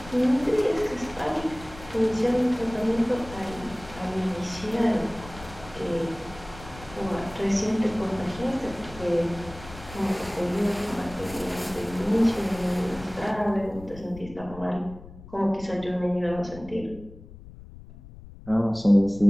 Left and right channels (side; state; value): left; noise; rumble, 17 dB below the sound